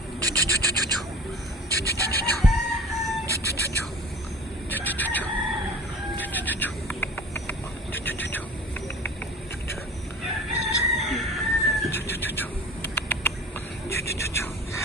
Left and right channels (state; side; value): normal; both; correlation 0.41